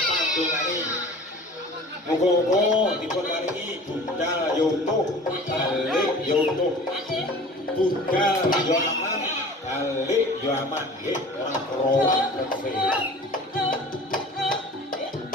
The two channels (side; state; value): both; normal; correlation 0.43